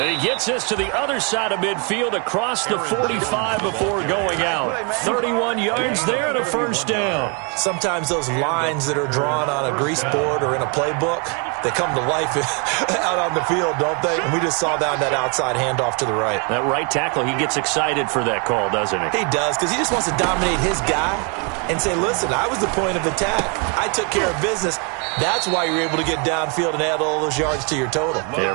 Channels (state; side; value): quieter; left; 35.8 dB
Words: he gets us to the other side of midfield across the 45 before going out. 31 yards there and a 1st down. Sometimes those lines that are drawn on a grease board or in a playbook, they come to life out on the field, don't they? And we just saw down that outside handoff to the right. That right tackle, he gets excited for that call, doesn't he? He does, because he just wants to dominate his guy and say, listen, I was the point of attack. I took care of business. That's why you're able to get downfield and add all those yards to your total.